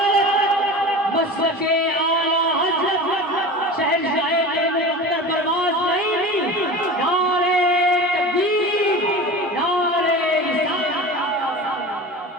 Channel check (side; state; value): both; normal; correlation 0.32